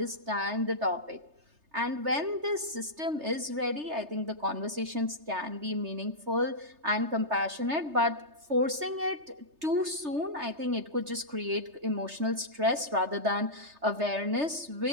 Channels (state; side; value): late; left; 3.3 ms